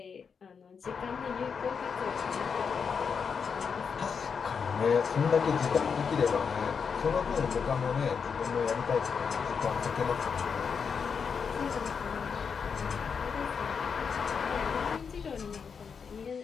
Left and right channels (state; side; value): quieter; right; 6.1 dB